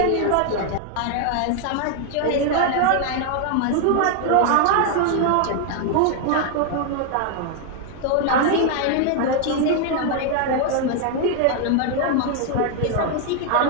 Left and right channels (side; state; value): both; different; correlation 0.00